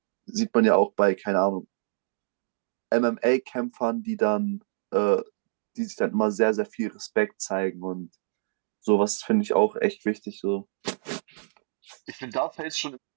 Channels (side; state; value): left; silent; digital silence